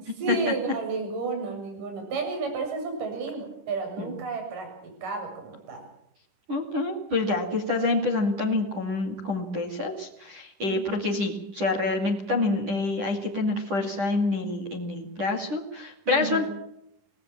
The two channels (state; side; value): late; left; 10 ms